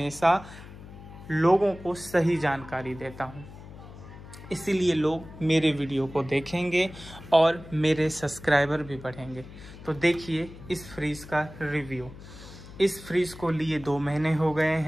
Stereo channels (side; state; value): left; noise; hum, 16 dB below the sound